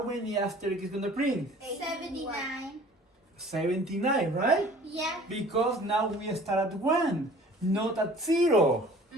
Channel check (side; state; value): both; normal; correlation 0.49